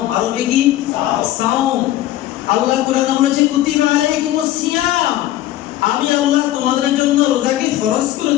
আরবি কি? সাওম। আল্লাহ কোরআনে বলেছে কুতিবা আলাইকুমুস সিয়াম, আমি আল্লাহ তোমাদের জন্য রোজাকে ফরজ করে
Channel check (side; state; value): right; quieter; 14.3 dB